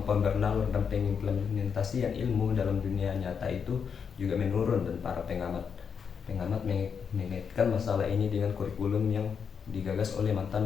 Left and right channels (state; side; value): quieter; right; 6.6 dB